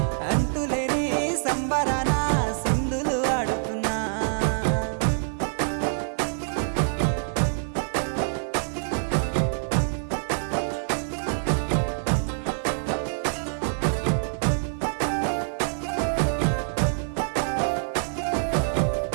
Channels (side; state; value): left; silent; digital silence